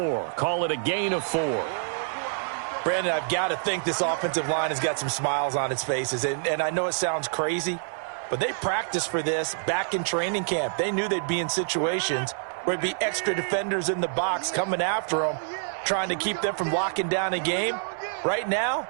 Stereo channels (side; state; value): left; silent; 60 dB below the other